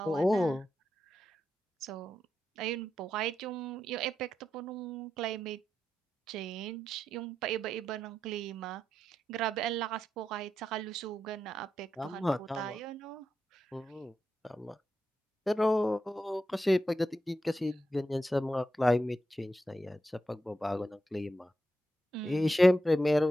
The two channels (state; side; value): normal; both; correlation 0.87